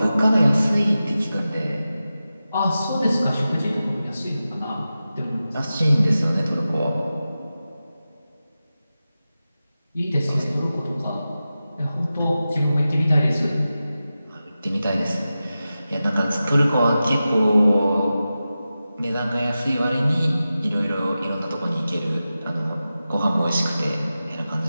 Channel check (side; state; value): both; inverted; correlation -0.93